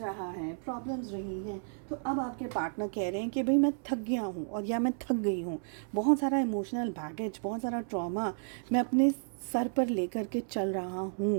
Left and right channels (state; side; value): silent; left; 56 dB below the other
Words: रहा है, प्रॉब्लम्स रही हैं, तो अब आपके पार्टनर कह रहे हैं कि भाई मैं थक गया हूँ और या मैं थक गई हूँ, बहुत सारा इमोशनल बैगेज, बहुत सारा ट्रॉमा मैं अपने सर पर लेकर के चल रहा